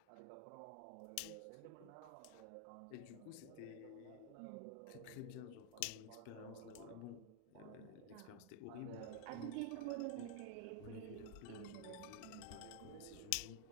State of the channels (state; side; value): different; both; correlation 0.00